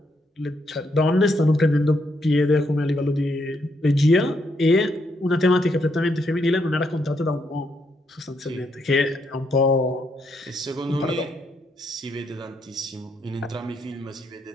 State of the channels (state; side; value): normal; both; correlation 0.77